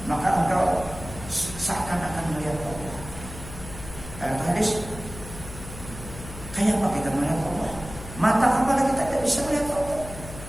maka engkau seakan-akan melihat Allah. Ayat hadis. Kayak apa kita melihat Allah? Mata kepala kita tidak bisa melihat Allah.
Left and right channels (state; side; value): noise; left; hum, 13 dB below the sound